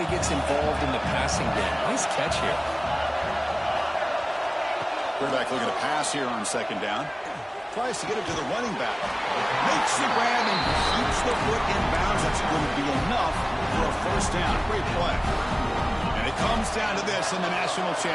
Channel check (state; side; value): identical; both; correlation 1.00